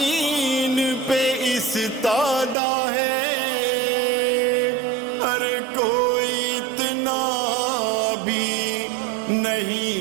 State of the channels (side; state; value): left; drops out; at 2.6 s